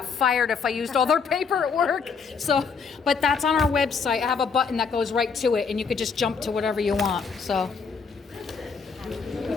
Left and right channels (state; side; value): quieter; right; 5.5 dB